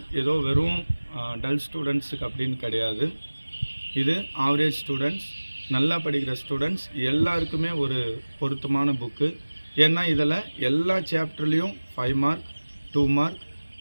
ஏதோ வெறும் டல் ஸ்டூடெண்ட்ஸுக்கு அப்படின்னு கிடையாது. இது ஆவரேஜ் ஸ்டூடெண்ட்ஸ், நல்லா படிக்கிற ஸ்டூடெண்ட்ஸ் எல்லாருக்குமே ஒரு பொருத்தமான புக்கு. ஏன்னா இதில் எல்லா சாப்டர்லேயும் 5 mark, 2 mark,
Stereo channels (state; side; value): inverted; both; correlation -1.00